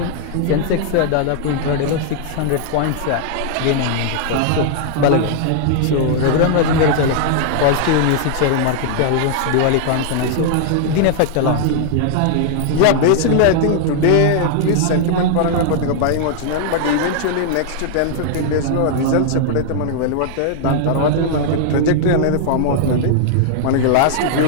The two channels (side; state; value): both; different; correlation -0.01